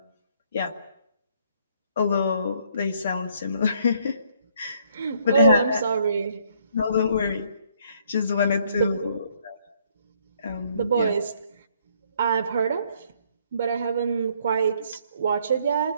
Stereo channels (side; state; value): both; inverted; correlation -0.66